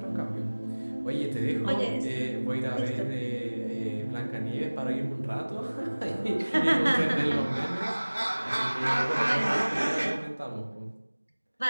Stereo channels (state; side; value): inverted; both; correlation -1.00